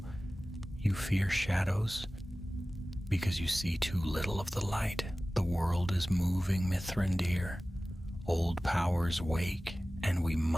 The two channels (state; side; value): normal; both; correlation 0.97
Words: "You fear shadows because you see too little of the light. The world is moving, Mithrandir. Old powers wake, and we